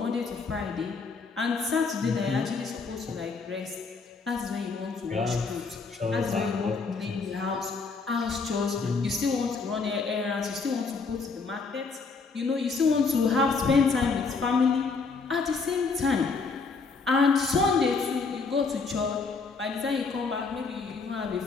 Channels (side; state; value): right; quieter; 4.5 dB